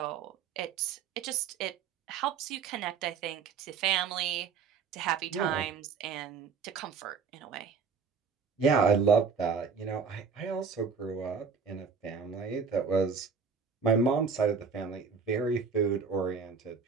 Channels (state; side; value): quieter; left; 5.7 dB